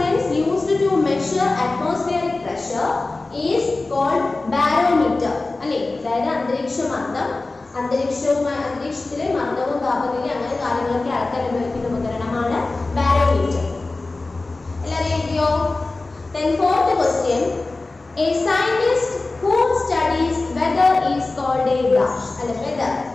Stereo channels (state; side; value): quieter; right; 3.3 dB